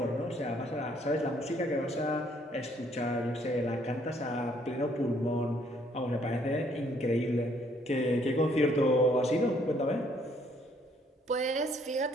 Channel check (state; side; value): normal; both; correlation 0.65